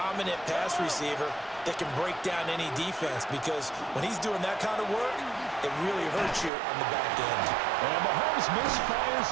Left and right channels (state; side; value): drops out; left; at 6.5 s